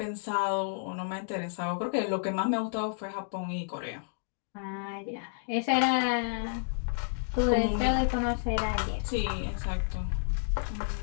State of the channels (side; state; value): right; silent; digital silence